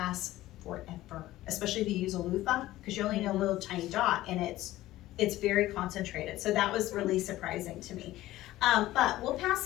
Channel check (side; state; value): right; quieter; 15.9 dB